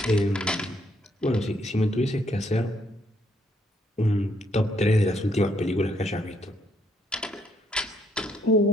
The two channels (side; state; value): both; normal; correlation 0.71